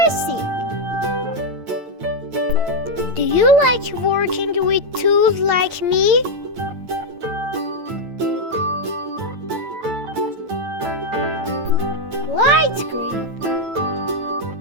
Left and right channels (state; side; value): late; left; 9.0 ms